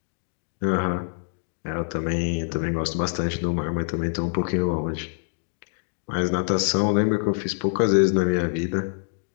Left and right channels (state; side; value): silent; right; digital silence